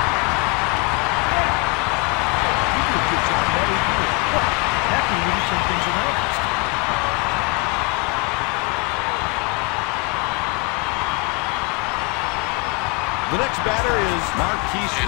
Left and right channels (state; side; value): quieter; right; 27.9 dB